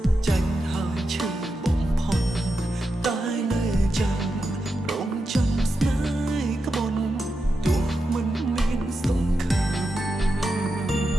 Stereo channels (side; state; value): both; normal; correlation 0.88